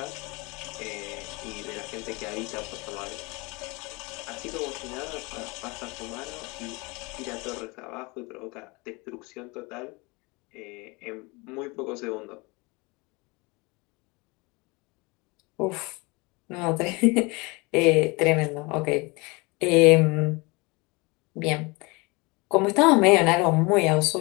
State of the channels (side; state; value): right; quieter; 26.5 dB